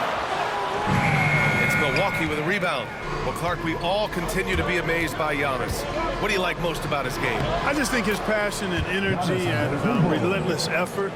It's Milwaukee with a rebound. Well, Clark, we all continue to be amazed by Giannis. What do you like most about his game? I just think his passion and energy and relentless effort,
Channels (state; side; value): identical; both; correlation 1.00